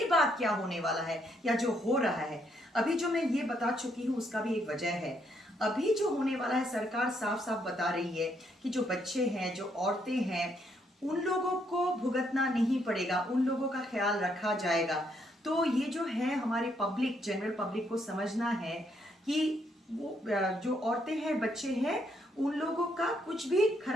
बाद क्या होने वाला है या जो हो रहा है, अभी जो मैं ये बता चुकी हूँ उसका भी एक वजह है। अभी जो होने वाला है, सरकार साफ साफ बता रही है कि जो बच्चे हैं, जो औरतें हैं, उन लोगों को भुगतना नहीं पड़ेगा, उन लोगों का ख्याल रखा जाएगा। तो ये जो है हमारे पब्लिक, जनरल पब्लिक को समझना है कि वो जो औरतें हैं, बच्चे हैं, उन लोगों का कुछ भी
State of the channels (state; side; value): normal; both; correlation 0.73